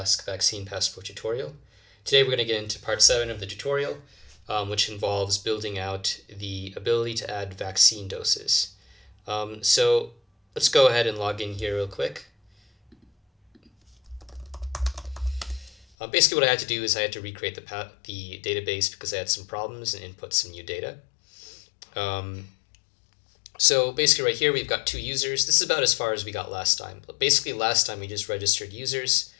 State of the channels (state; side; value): drops out; right; at 15.9 s